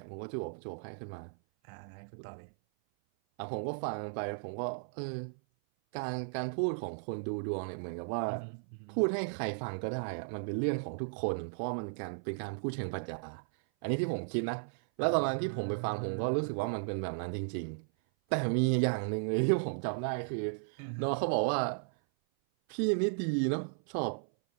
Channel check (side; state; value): left; silent; 54 dB below the other